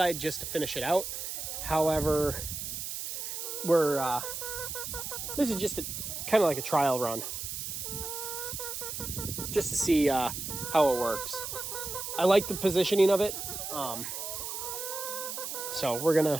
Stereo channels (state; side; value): noise; right; hiss, 5 dB below the sound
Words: just to finish it out. However, this is just kind of like a trial run, just to see how it works. I like the positioning of it, so we're